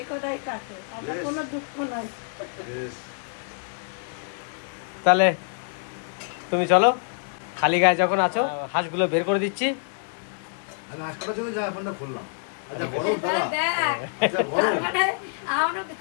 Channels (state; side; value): silent; right; 61 dB below the other